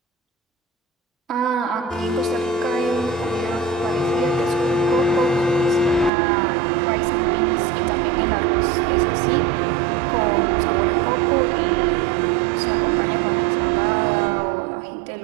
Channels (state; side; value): drops out; left; at 6.1 s